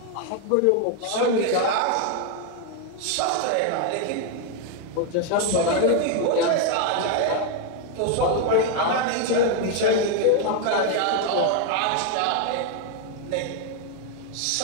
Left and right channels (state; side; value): different; both; correlation 0.01